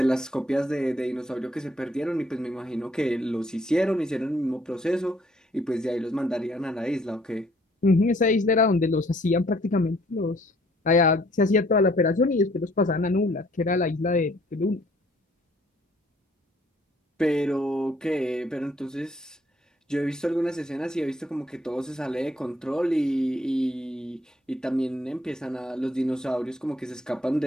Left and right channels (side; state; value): both; normal; correlation 0.62